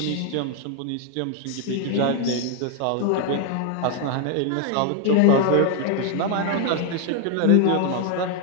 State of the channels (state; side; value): different; both; correlation 0.01